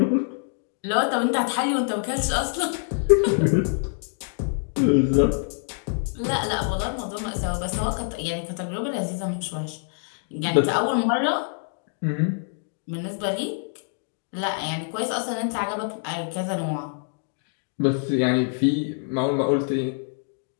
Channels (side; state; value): right; silent; 59 dB below the other